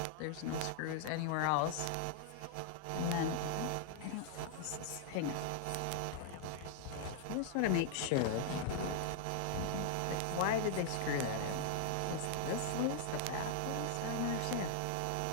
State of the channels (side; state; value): both; different; correlation -0.01